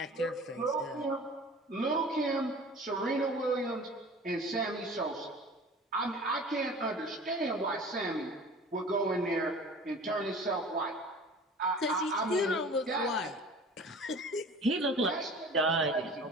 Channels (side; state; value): both; normal; correlation 0.42